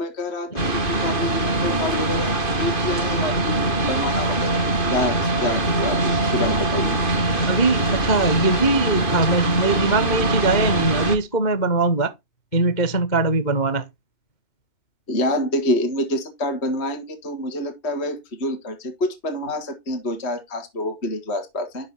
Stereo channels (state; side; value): late; right; 2.5 ms